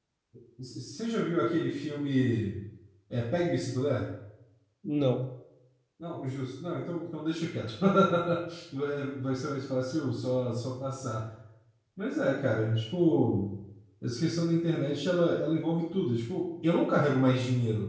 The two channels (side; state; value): both; identical; correlation 1.00